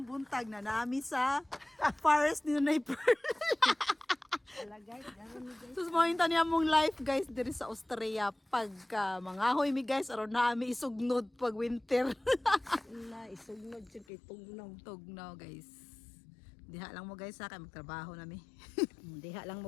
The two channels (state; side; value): drops out; right; at 14.1 s